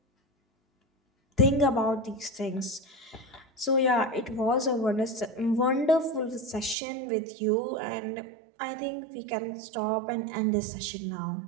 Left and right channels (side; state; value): left; drops out; at 6.8 s